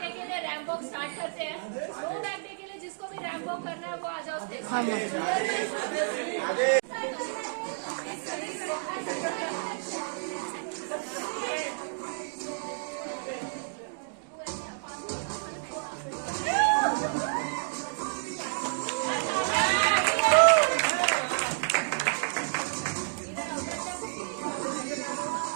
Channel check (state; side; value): silent; left; digital silence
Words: डे के लिए रैंप वॉक स्टार्ट करते हैं. नो बैग डे के लिए जिसको भी रैंप वॉक करना है वो आ जाओ स्टेज.